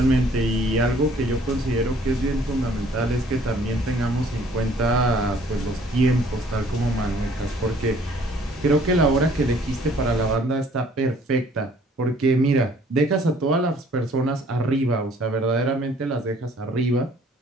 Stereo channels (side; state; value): both; normal; correlation 0.58